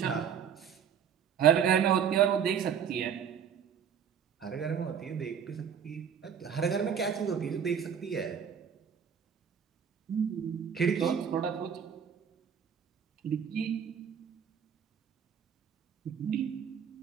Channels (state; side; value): quieter; left; 7.8 dB